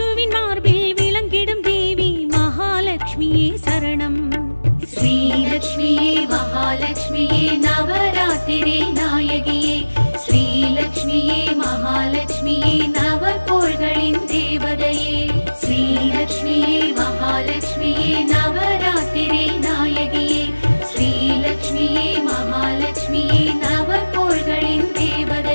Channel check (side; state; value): both; inverted; correlation -1.00